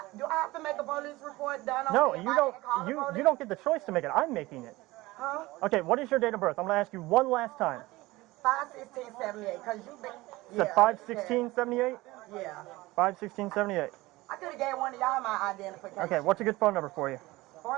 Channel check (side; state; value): left; quieter; 19.9 dB